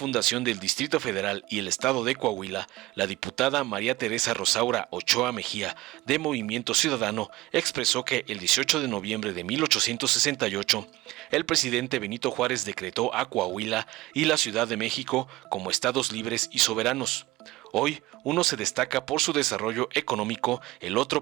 del Distrito Federal y el Estado de Coahuila, la diputada María Teresa Rosaura Ochoa Mejía, de Movimiento Ciudadano, expresó que el 18 de noviembre de 1868, el presidente Benito Juárez decretó a Coahuila y la Ciudad de México como estados libres y soberanos. Hoy, uno se destaca por su desarrollo económico, el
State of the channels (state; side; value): quieter; left; 18.6 dB